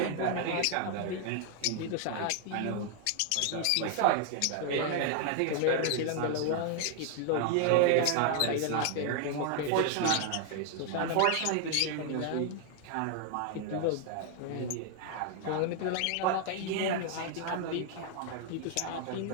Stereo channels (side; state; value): both; different; correlation 0.00